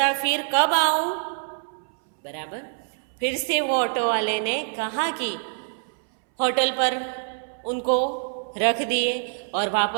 फिर कब आऊं? बराबर। फिर से वो ऑटो वाले ने कहा कि होटल पर उनको रख दिए और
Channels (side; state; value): left; silent; 62 dB below the other